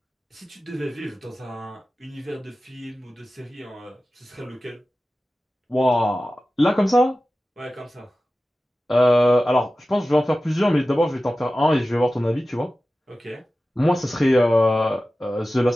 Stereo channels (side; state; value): both; normal; correlation 0.95